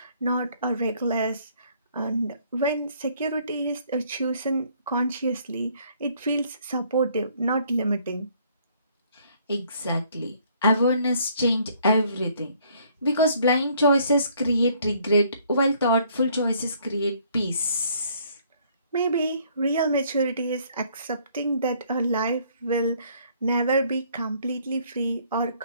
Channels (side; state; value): both; inverted; correlation -0.63